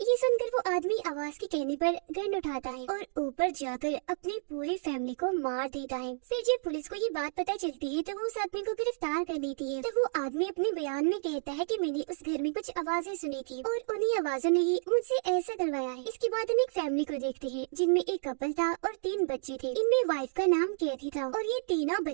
ये सुनकर वो आदमी आवाज के कहने पर गन उठाता है और ऊपर जाकर अपनी पूरी फैमिली को मार देता है। फिर जब पुलिस को ये बात पता चलती है तो वो उस आदमी को गिरफ्तार कर लेती है। तो वो आदमी अपने बयान में कहता है कि मैंने उस घर में कुछ आवाजें सुनी थी और उन्हीं आवाजों ने ही मुझसे ऐसा करवाया है। इसके बाद हम एक फैमिली को देखते हैं जिनमें एक कपल था और 3 बच्चे थे। इनमें वाइफ का नाम कैथी था और ये तीनों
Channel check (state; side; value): silent; left; digital silence